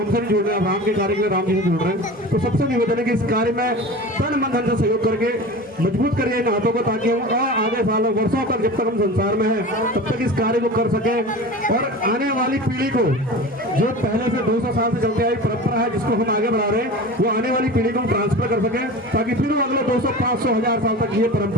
भी जुड़ रहे हैं, राम के कार्य के लिए राम जी से जुड़ रहे हैं, तो सबसे निवेदन है कि इस कार्य में तन मन धन से सहयोग करके मजबूत करिए इन हाथों को, ताकि हम आगे सालों वर्षों तक, जब तक हम संसार में हैं तब तक इस कार्य को कर सके। और आने वाली पीढ़ी को, जो पहले से 200 साल से चलते आई परंपरा है जिसको हम आगे बढ़ा रहे हैं, वो आने वाली पीढ़ी को ट्रांसफर कर सके, ताकि फिर अगले 200, 500, 1000 साल तक ये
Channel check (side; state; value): both; normal; correlation 0.34